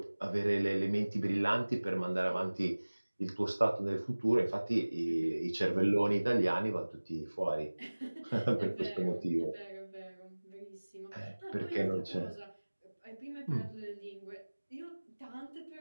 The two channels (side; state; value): both; inverted; correlation -1.00